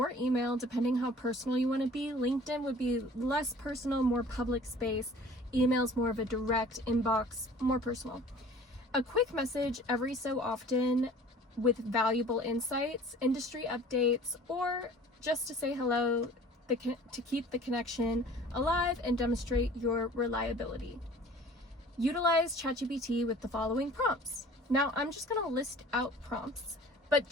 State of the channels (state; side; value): normal; both; correlation 0.48